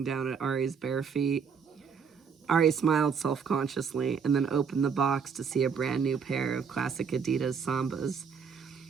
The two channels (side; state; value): left; quieter; 6.3 dB